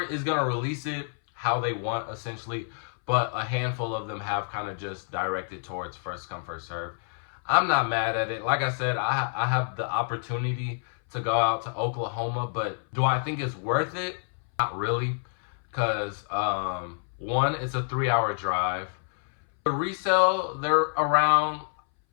is going to release it how they want, essentially. but a handful of them have kind of just directed towards first come, first serve. I'm not mad at it. Like I said, I have the opportunity to go out to Oklahoma, but do I think it's worth it? Not really, because one, it's a 3-hour drive. The resale, they're around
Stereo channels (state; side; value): silent; right; 59 dB below the other